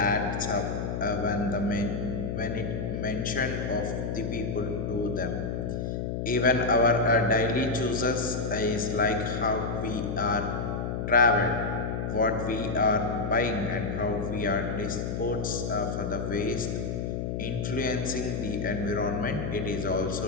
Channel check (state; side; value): noise; left; hum, 2 dB below the sound